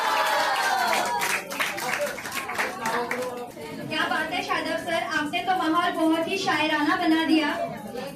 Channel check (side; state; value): both; identical; correlation 1.00